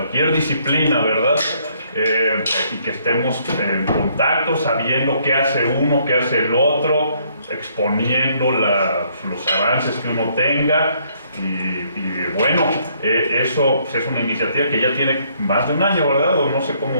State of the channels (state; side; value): inverted; both; correlation -0.67